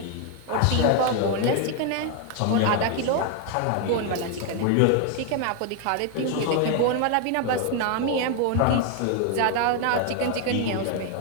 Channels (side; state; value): both; different; correlation 0.01